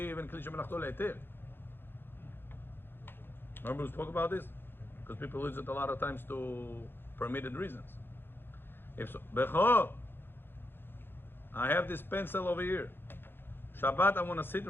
even kli shemelachto le'eter. Remember we spoke about this? Because people use it a lot of times to permitted reasons. If so, Becho, I have this pencil over here. Shabbat, I want to sit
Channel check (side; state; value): right; late; 0.10 ms